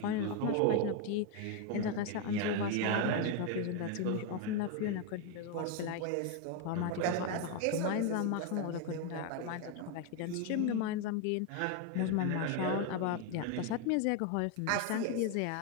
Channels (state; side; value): different; both; correlation 0.01